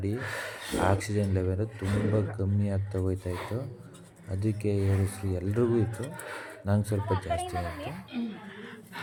ಆಕ್ಸಿಜನ್ ಲೆವೆಲ್ ತುಂಬ ಕಮ್ಮಿ ಆಗ್ತಾ ಹೋಯ್ತಾಯಿತ್ತು. ಅದಕ್ಕೆ ಏರಿಸ್ರು ಎಲ್ರಿಗೂ ಇತ್ತು, ನಂಗೆ ಸ್ವಲ್ಪ ಜಾಸ್ತಿ ಆಯಿತು.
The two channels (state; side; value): identical; both; correlation 1.00